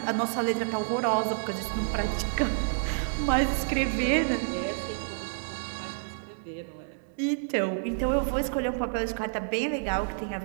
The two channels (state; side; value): silent; left; digital silence